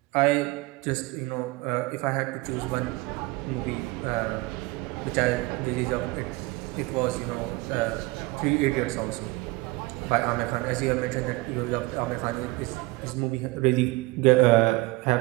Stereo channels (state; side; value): quieter; left; 22.3 dB